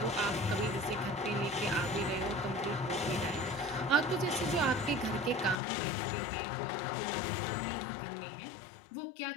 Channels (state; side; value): drops out; right; at 5.6 s